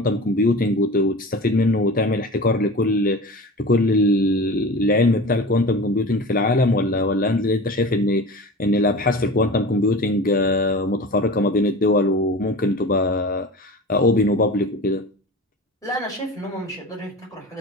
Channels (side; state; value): both; normal; correlation 0.34